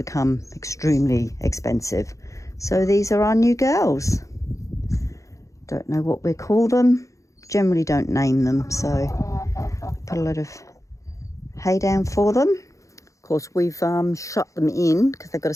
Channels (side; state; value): right; late; 0.15 ms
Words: extremely expensive. So these are our new girls. Don't know what we call them, generally don't name them, so put a lot of hay down for them. Of course, we've shut them in because they've got to